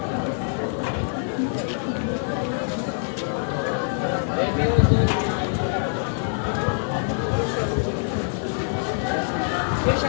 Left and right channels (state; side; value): silent; right; 62 dB below the other